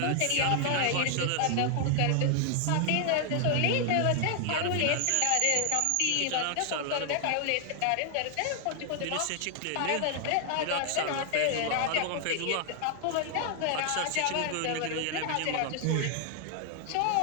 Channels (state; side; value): different; both; correlation 0.00